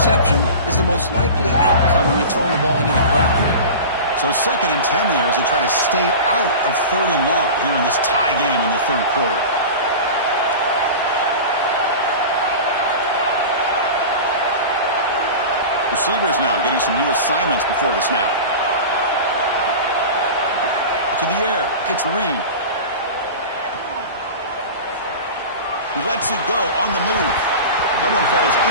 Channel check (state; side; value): inverted; both; correlation -0.32